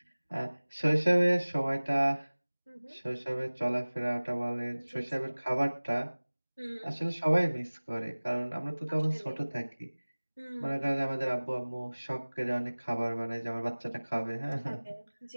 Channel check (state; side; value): inverted; both; correlation -1.00